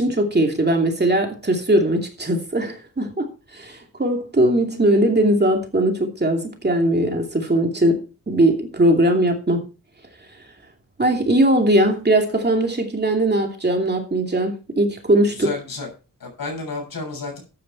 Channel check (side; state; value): both; normal; correlation 0.39